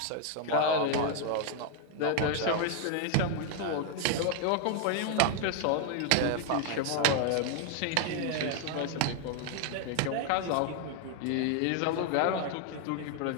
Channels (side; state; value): both; different; correlation 0.00